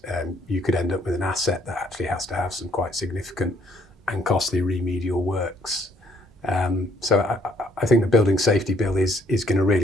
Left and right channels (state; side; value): normal; both; correlation 0.66